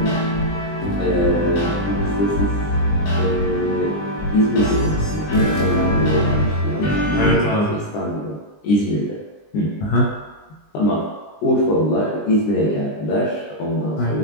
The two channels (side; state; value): right; late; 20 ms